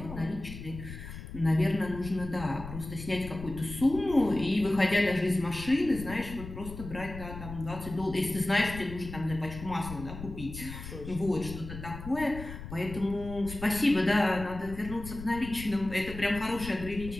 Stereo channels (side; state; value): left; noise; rumble, 11 dB below the sound